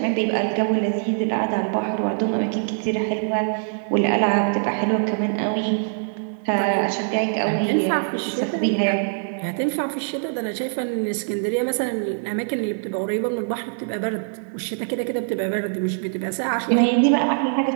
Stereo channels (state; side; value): silent; left; digital silence